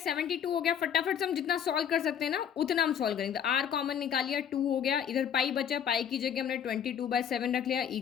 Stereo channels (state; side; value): quieter; right; 8.6 dB